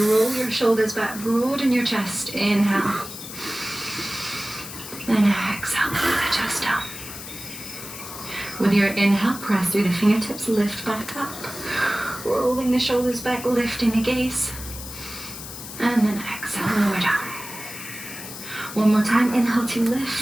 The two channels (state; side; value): noise; left; hiss, 11 dB below the sound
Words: your shoulders back, broaden your chest. Inhale. Then exhale, pull the chest down. With your inhale, press through the fingertips, lift back up. Rolling the shoulders back, lifting the gaze. And then exhale, lower down. One more time, inhale to